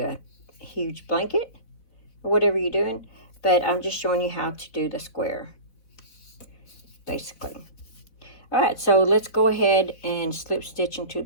a huge blanket or whatever you're doing. But I'm just showing you how to do the square, basically. All right, so let's go ahead and slip stitch into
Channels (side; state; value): right; late; 4.0 ms